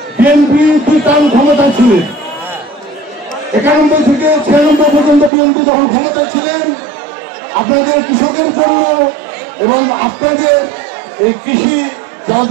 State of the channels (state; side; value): drops out; left; at 5.3 s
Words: বিএনপি 2 টার্ম ক্ষমতা ছিলেন, 91 থেকে 96 পর্যন্ত বিএনপি যখন ক্ষমতা ছিলেন, আপনাদের কৃষকের জন্য এবং আপনাদের এই কৃষি